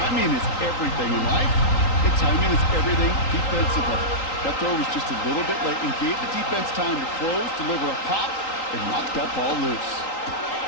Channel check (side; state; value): right; late; 3.8 ms